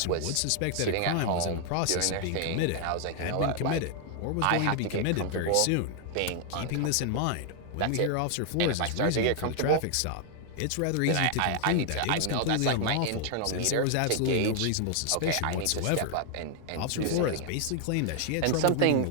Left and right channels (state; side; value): different; both; correlation 0.00